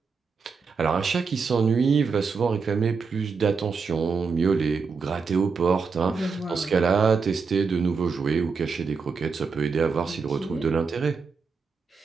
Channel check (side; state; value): left; quieter; 5.1 dB